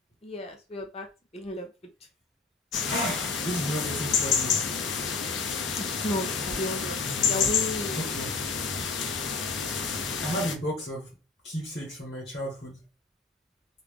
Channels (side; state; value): right; quieter; 4.0 dB